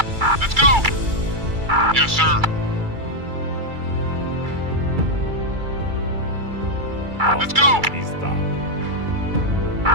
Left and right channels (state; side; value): late; left; 2.3 ms